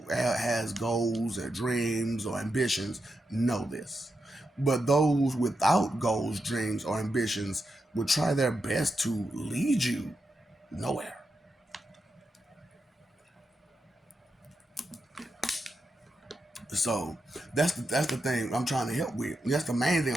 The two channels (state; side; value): normal; both; correlation 0.86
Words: has goals or dreams or ambitions know this. But those without goals, dreams, or ambitions will try their best to lead you nowhere. So that's the thing I'm trying to help with. That's the main thing